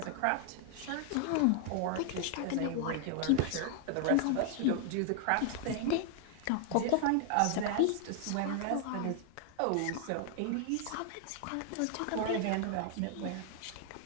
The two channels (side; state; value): both; different; correlation 0.00